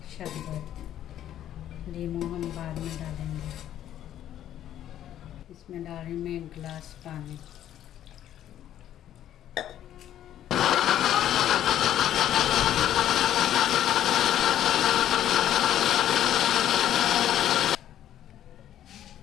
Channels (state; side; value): quieter; right; 11.4 dB